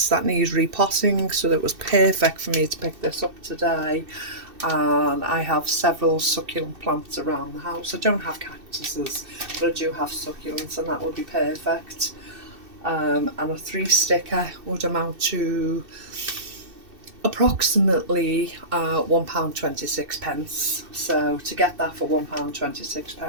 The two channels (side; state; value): left; late; 2.6 ms